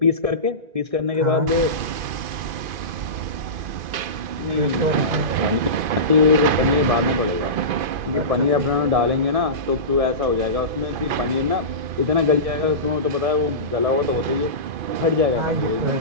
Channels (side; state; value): left; late; 2.5 ms